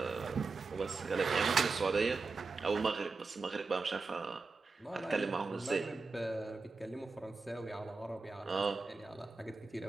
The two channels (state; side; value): quieter; left; 4.2 dB